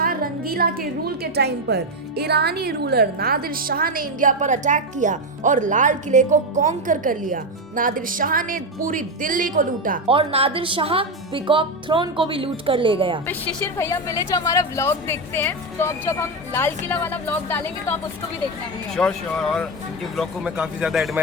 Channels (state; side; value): normal; both; correlation 0.10